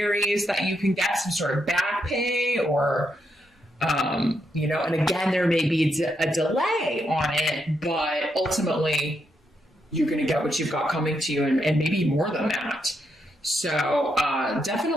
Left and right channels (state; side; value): normal; both; correlation 0.80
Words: that you can get some sort of back pay or And again, there may be a delay on it, but ultimately you're going to get what you've got coming to you, and maybe more than that. So